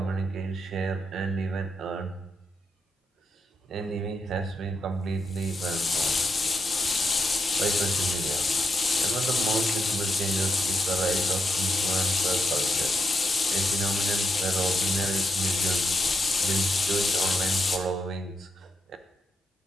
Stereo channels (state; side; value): normal; both; correlation 0.82